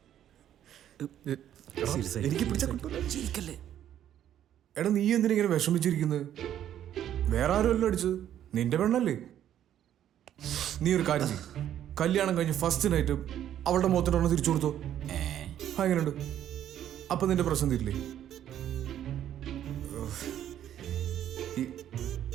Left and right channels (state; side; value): quieter; left; 10.9 dB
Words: എനിക്ക് പിടിച്ചാ കിട്ടൂല. എടാ, നീ എന്തിനിങ്ങനെ വിഷമിച്ചിരിക്കുന്നത്? വേറെ ആരുമല്ലോ അടിച്ചത്, നിന്റെ പെണ്ണല്ലേ. നീ ഒരു കാര്യം ചെയ്യും, കല്യാണം കഴിഞ്ഞ് ഫസ്റ്റ് നൈറ്റ് അവളുടെ മുഖത്തിനൊന്ന് തിരിച്ചു കൊടുത്തോ. എങ്ങനെയുണ്ട്? അപ്പൊ നിന്റെ പ്രശ്നം തീരില്ലേ?